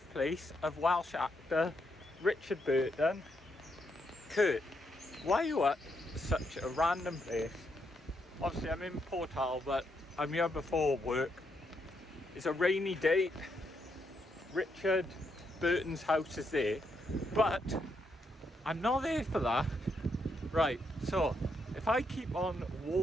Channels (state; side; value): normal; both; correlation 0.79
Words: of Welsh actor Richard Burton. Kurt, why are you at such a random place? Obviously I'm in Pontywood, but I'm here before work. It's a rainy day. Richard Burton's house is there, but I'm not there for that. Right, so if I keep on